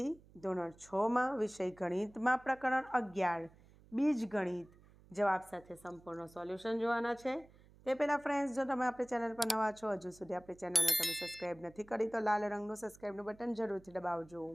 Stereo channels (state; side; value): noise; right; hum, 25 dB below the sound